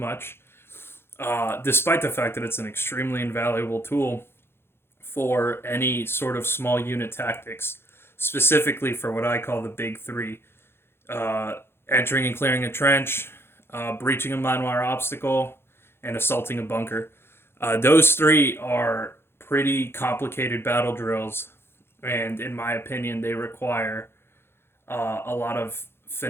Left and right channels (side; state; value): right; late; 0.11 ms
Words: despite the fact that it's an extremely invaluable tool for any sort of small unit tactics, specifically for what I call the big three: uh, entering and clearing a trench, breaching a mine wire obstacle, and assaulting a bunker. Those three are pretty complicated battle drills, and in my opinion, they require a lot of